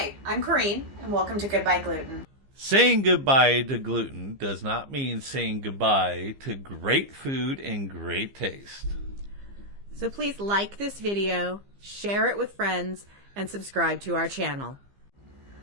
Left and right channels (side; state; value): left; late; 15 ms